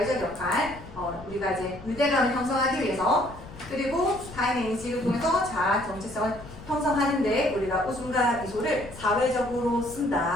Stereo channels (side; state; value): left; noise; rumble, 16 dB below the sound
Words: 역할, 우리가 이제 유대감을 형성하기 위해서 그리고 타임 인식을 통해서 자아 정체성을 형성하는데 우리가 웃음과 미소를 사회적으로